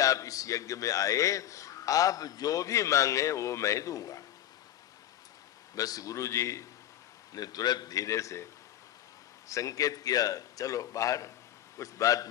इस यज्ञ में आए, आप जो भी मांगे वो मैं दूंगा। बस गुरु जी ने तुरंत धीरे से संकेत किया, चलो बाहर, कुछ बात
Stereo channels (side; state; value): right; quieter; 12.0 dB